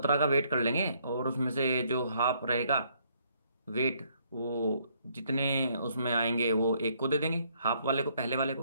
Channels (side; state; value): both; inverted; correlation -0.68